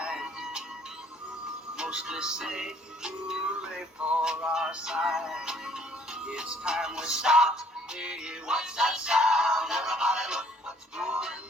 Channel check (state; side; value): normal; both; correlation 0.60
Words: Mostly say hooray for our side. It's time we stop. Hey, what's that sound? Everybody look what's going